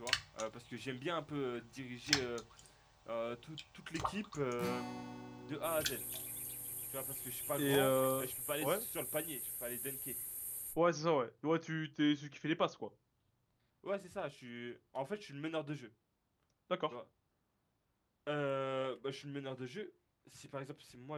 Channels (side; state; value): both; identical; correlation 1.00